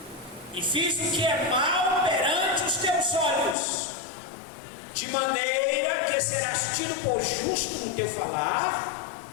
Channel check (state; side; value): drops out; right; at 3.6 s